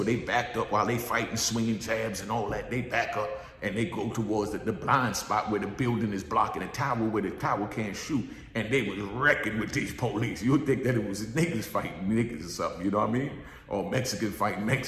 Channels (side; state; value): both; identical; correlation 1.00